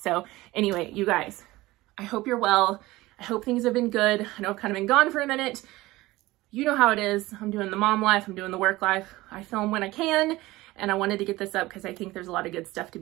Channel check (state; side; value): quieter; left; 18.9 dB